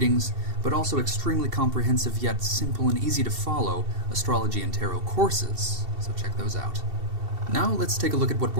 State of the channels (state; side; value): late; left; 2.7 ms